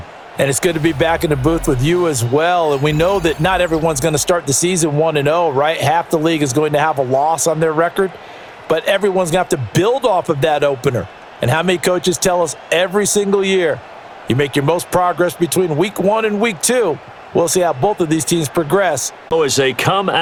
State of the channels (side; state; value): both; identical; correlation 1.00